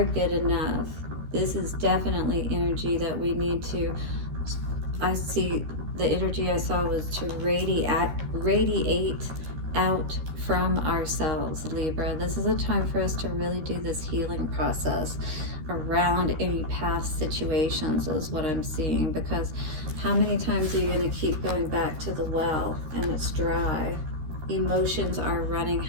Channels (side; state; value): left; late; 13 ms